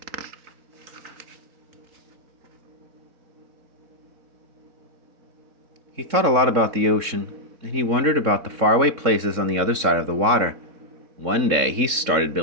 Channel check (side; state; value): left; late; 3.6 ms